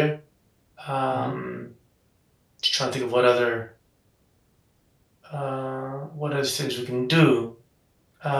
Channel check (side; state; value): both; identical; correlation 1.00